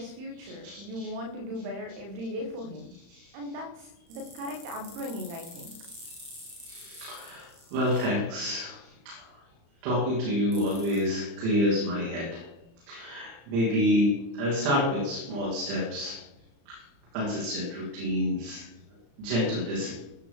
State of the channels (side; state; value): left; late; 35 ms